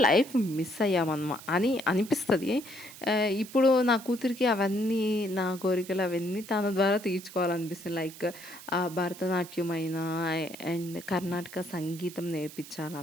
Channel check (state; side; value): noise; right; hiss, 16 dB below the sound